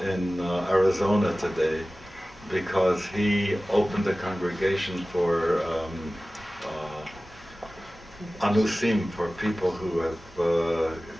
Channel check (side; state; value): both; normal; correlation 0.97